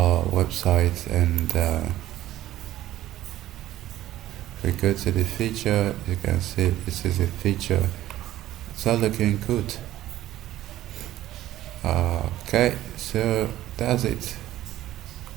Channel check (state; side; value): quieter; left; 14.2 dB